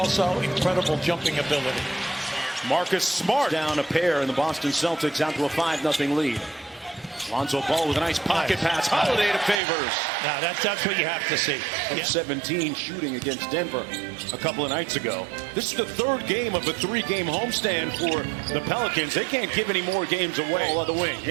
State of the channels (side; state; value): left; drops out; at 9.6 s